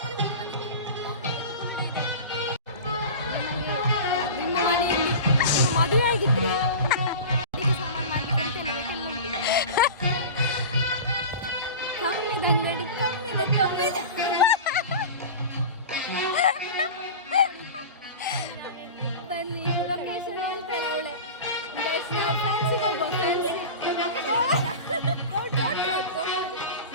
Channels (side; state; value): both; inverted; correlation -0.32